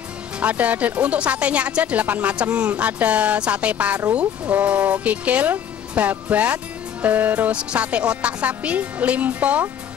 Untuk satenya aja 8 macam. Ada sate paru, kikil, babat, terus sate otak sapi, limpo,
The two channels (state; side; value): quieter; right; 9.0 dB